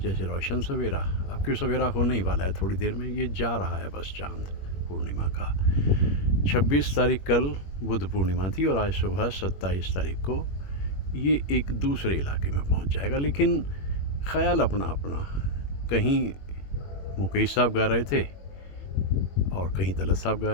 रोशन सवेरा। अब क्यों सवेरा होने ही वाला है, थोड़ी देर में ये जा रहा है बस चांद पूर्णिमा का। 26 तारीख कल बुद्ध पूर्णिमा थी और आज सुबह 27 तारीख को ये एक दूसरे इलाके में पहुंच जाएगा। लेकिन ख्याल अपना अपना। कहीं मुकेश साहब गा रहे थे और कहीं तलत साहब गा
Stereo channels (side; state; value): right; late; 21 ms